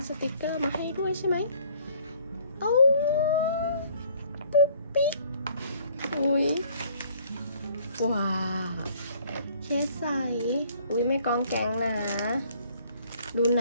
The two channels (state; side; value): inverted; both; correlation -0.59